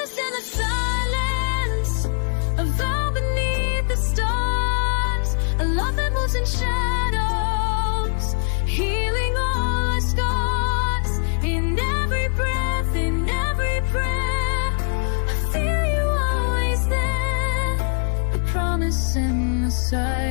in the silence, a vow beneath the stars, a love that moves in shadows, healing all our scars. In every breath, in every prayer, I feel you always there. The promise in the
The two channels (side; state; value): right; silent; 64 dB below the other